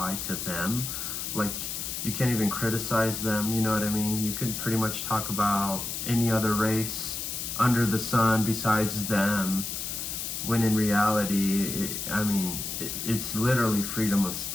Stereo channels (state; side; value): noise; left; hiss, 4 dB below the sound